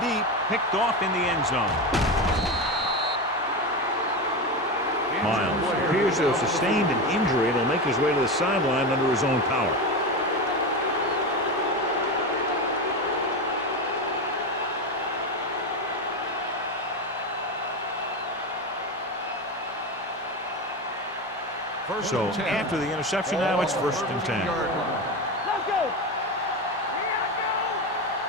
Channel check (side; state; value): both; normal; correlation 0.19